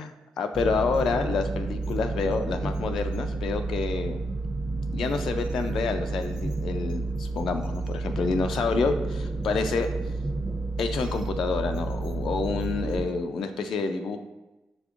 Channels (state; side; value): normal; both; correlation 0.79